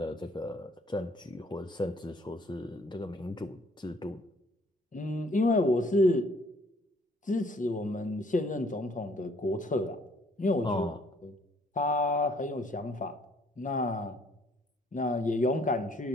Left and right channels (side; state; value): both; normal; correlation 0.62